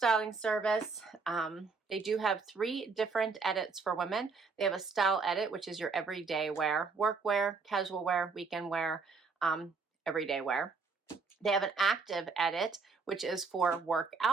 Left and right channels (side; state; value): left; quieter; 4.6 dB